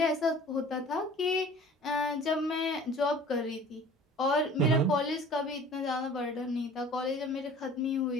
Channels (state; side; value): normal; both; correlation 0.46